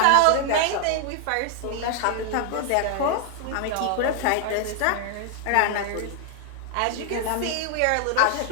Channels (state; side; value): different; both; correlation 0.00